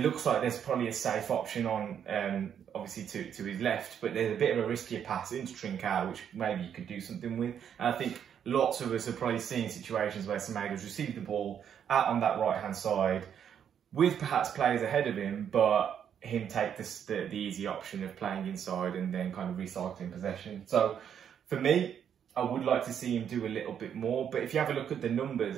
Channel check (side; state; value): left; quieter; 8.6 dB